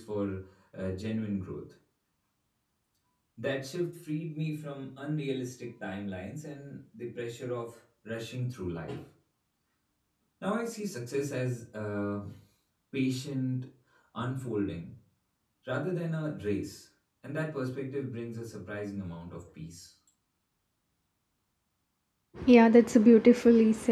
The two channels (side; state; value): both; identical; correlation 1.00